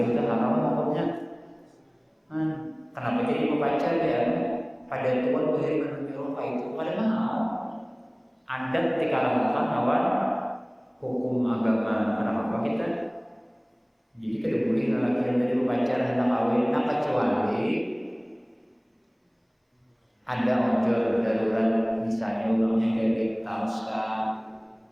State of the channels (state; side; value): identical; both; correlation 1.00